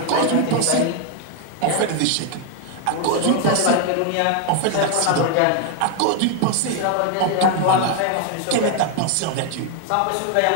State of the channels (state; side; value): different; both; correlation 0.01